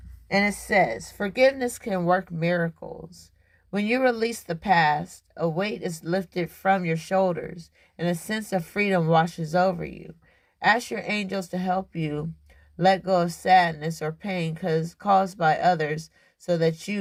And it says, forgiveness can work miracles. When you release the past, a weight is lifted from your shoulders and a sense of freedom washes over you. Ask your angels to help you let go of sadness or pain caused by others so that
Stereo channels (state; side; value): identical; both; correlation 1.00